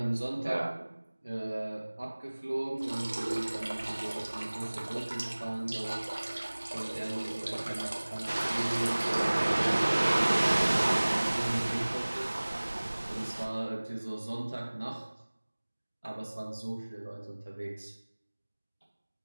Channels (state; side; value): inverted; both; correlation -1.00